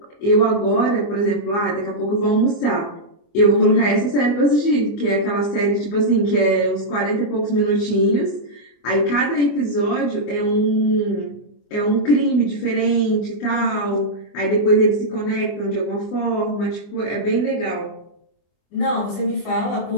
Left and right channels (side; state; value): right; late; 25 ms